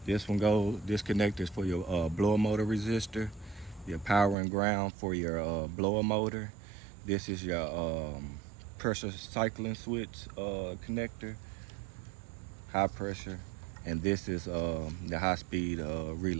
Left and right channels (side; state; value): left; drops out; at 4.4 s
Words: this connector is for your blower motor resistor, your power and ground for your blower motor. This is your pressure cycling switch connector, high pressure, and this is the high-speed